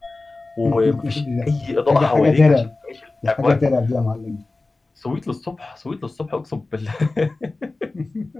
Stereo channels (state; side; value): quieter; right; 3.3 dB